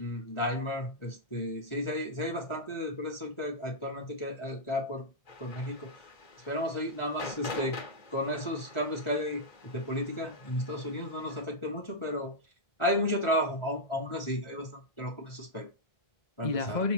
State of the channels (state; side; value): late; right; 1.4 ms